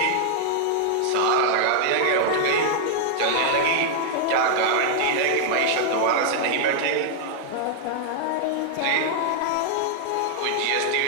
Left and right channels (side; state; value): both; different; correlation 0.00